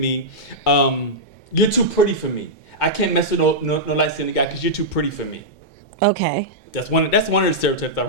"You're too pretty for me. I can't mess with no light skinned guy because you're too pretty for me." Okay. That's one of the stereotypes I've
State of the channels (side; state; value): both; normal; correlation -0.10